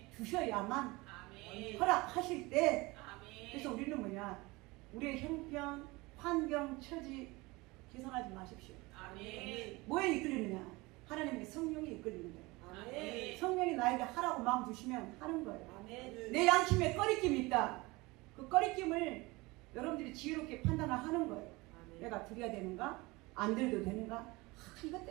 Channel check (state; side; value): quieter; left; 22.9 dB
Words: 주셔야만 허락하실 때. 그래서 우리는 뭐냐, 우리의 형편 환경 처지 계산하지 마십시오. 뭐에 이끌리느냐? 하나님의 성령이 이끌리는 거예요. 성령이 나에게 하라고 마음 주시면 하는 거예요. 내 양심에 꺼리낌이 있다. 그 꺼리낌을 여러분들이 지혜롭게 판단을 하는 거예요. 내가 드려야 되는가? 안 드려도 되는가? 이것